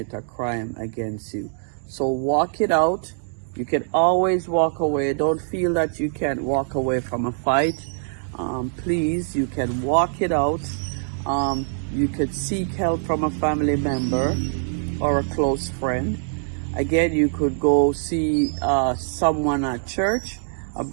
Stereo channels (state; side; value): silent; left; digital silence